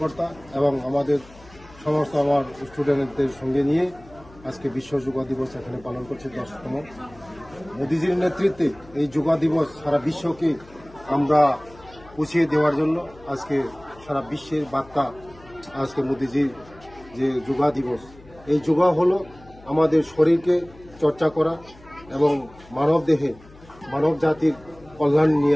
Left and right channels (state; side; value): noise; left; hum, 23 dB below the sound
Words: এবং আমাদের সমস্ত আমার স্টুডেন্টদের সঙ্গে নিয়ে আজকে বিশ্ব যোগ দিবস এখানে পালন করছি 10তম। মোদিজির নেতৃত্বে এই যোগ দিবস সারা বিশ্বকে আমরা পৌঁছিয়ে দেওয়ার জন্য আজকে সারা বিশ্বের বার্তা আজকে মোদিজির যে যোগ দিবস। এই যোগ হলো আমাদের শরীরকে চর্চা করা এবং মানব দেহে মানব জাতির কল্যাণ